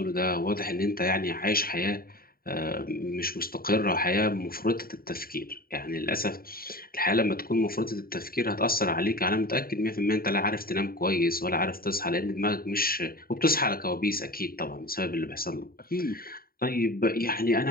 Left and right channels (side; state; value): right; late; 0.43 ms